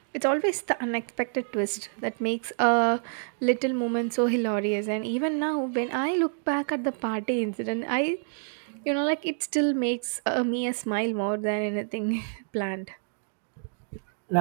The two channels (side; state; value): left; silent; 59 dB below the other